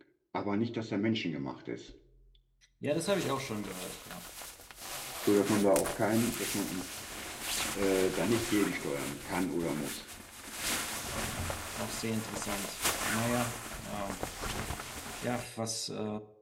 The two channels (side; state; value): both; identical; correlation 1.00